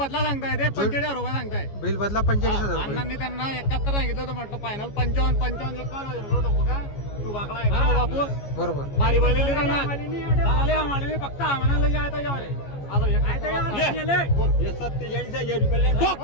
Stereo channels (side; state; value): right; late; 14 ms